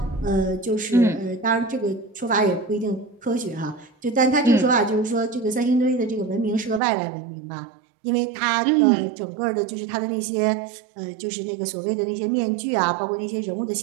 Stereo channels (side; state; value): left; drops out; at 6.8 s